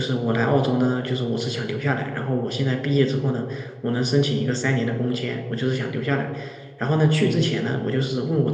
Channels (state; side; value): identical; both; correlation 1.00